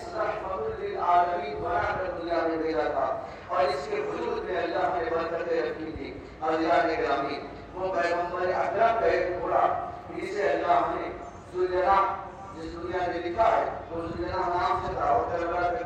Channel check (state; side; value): identical; both; correlation 1.00